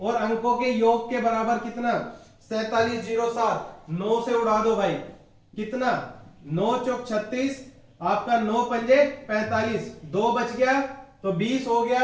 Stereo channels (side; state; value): both; identical; correlation 1.00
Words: अंकों के योग के बराबर कितना, 4707, 9 से उड़ा दो भाई, कितना, 9 चौक 36, आपका 9 पंजे 45, 2 बच गया तो 20 हो